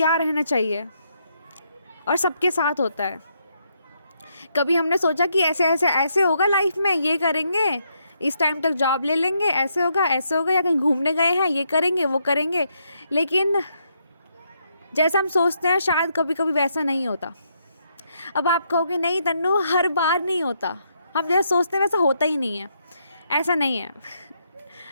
रहना चाहिए, और सबके साथ होता है। कभी हमने सोचा कि ऐसे ऐसे ऐसे होगा लाइफ में, ये करेंगे, इस टाइम तक जॉब ले लेंगे, ऐसे होगा, या कहीं घूमने गए हैं, ये करेंगे वो करेंगे। लेकिन जैसा हम सोचते हैं शायद कभी कभी वैसा नहीं होता। अब आप कहोगे नहीं तन्नू, हर बार नहीं होता, हम जैसा सोचते हैं वैसा होता ही नहीं है। ऐसा नहीं है।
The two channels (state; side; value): inverted; both; correlation -0.77